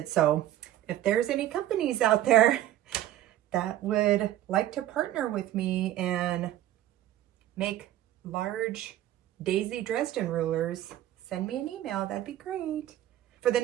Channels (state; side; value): quieter; left; 13.3 dB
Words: So if there's any companies out there that would like to partner with me and make large Daisy Dresden rulers, send me an email. That'd be great. For the